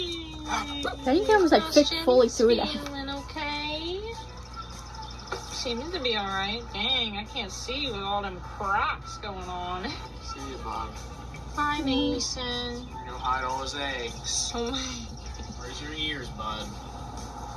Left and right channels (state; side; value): identical; both; correlation 1.00